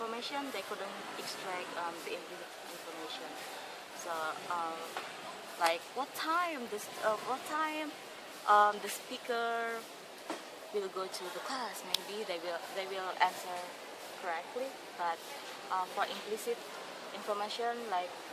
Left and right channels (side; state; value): both; identical; correlation 1.00